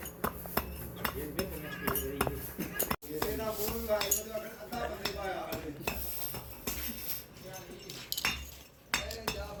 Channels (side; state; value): both; identical; correlation 1.00